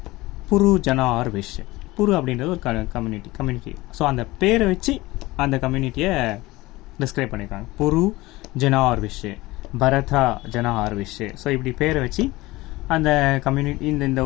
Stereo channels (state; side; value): quieter; right; 19.8 dB